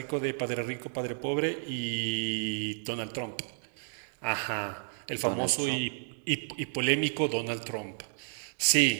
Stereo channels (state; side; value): silent; left; digital silence